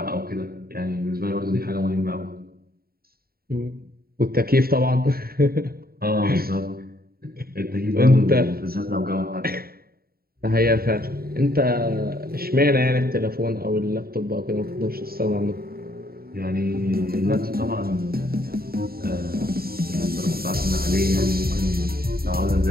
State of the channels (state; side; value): late; left; 0.44 ms